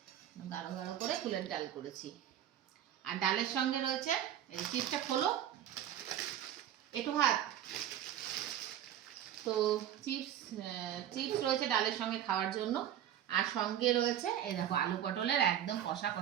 গাঢ় গাঢ় করে কুলের ডাল করেছি। আর ডালের সঙ্গে রয়েছে এই চিপসটা খোলো, একটু ভাত। তো চিপস চিপস রয়েছে ডালের সঙ্গে খাওয়ার জন্য। আর সঙ্গে রয়েছে এই দেখো আলু পটলের একদম কষা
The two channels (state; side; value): quieter; left; 10.8 dB